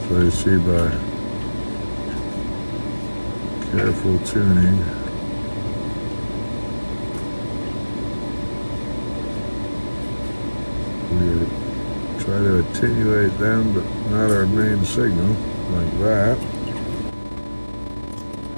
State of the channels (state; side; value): inverted; both; correlation -1.00